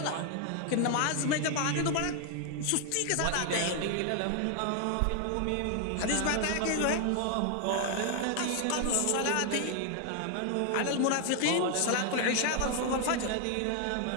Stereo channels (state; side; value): different; both; correlation 0.00